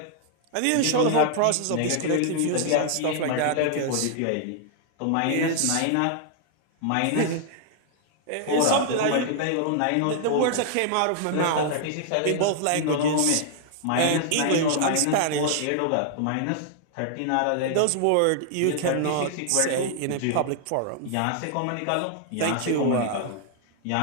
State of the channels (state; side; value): different; both; correlation -0.01